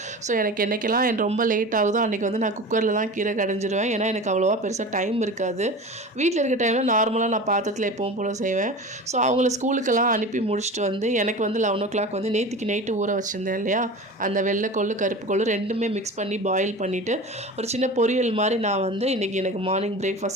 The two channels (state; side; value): normal; both; correlation 0.33